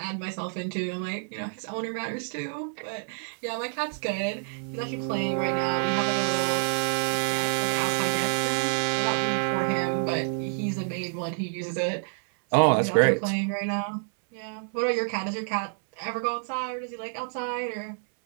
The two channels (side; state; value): left; silent; 59 dB below the other